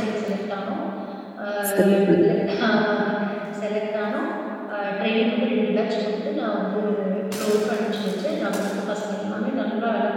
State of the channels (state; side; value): identical; both; correlation 1.00